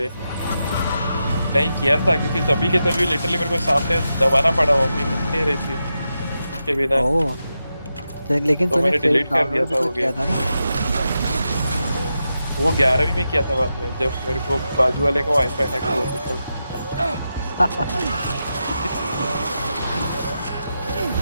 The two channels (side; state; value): both; inverted; correlation -0.88